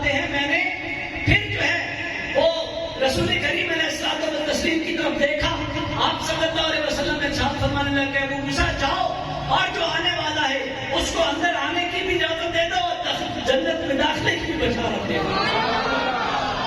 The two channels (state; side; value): identical; both; correlation 1.00